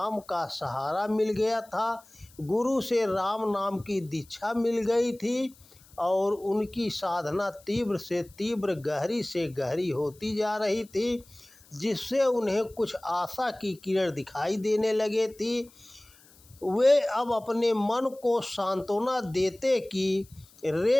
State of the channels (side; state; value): left; noise; hiss, 26 dB below the sound